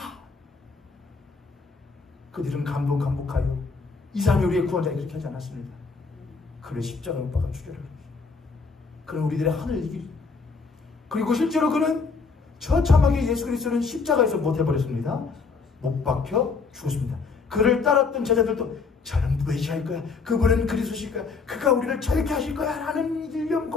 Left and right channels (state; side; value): quieter; right; 4.7 dB